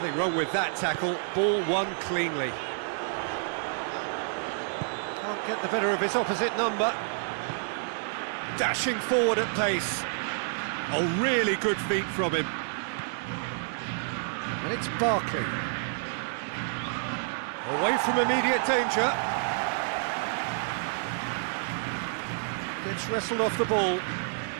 wrong with that tackle. Ball won cleanly. Can't get the better of his opposite number. Dashing forward at pace. A really good feat from him. And it's Barkley. Away from immediate danger. Gets wrestled off the ball.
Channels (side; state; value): left; silent; digital silence